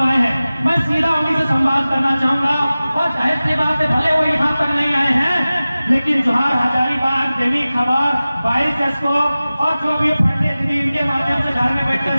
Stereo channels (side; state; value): both; inverted; correlation -0.97